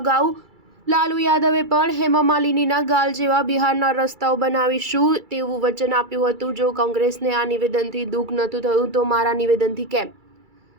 લાલુ યાદવે પણ હેમા માલિનીના ગાલ જેવા બિહારના રસ્તાઓ બનાવીશું તેવું વચન આપ્યું હતું. જો કોંગ્રેસને આ નિવેદનથી દુઃખ નહોતું થયું તો મારા નિવેદનથી કેમ?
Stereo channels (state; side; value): late; left; 2.3 ms